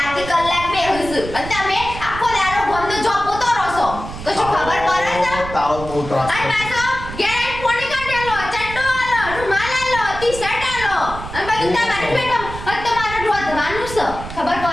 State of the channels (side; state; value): right; noise; rumble, 10 dB below the sound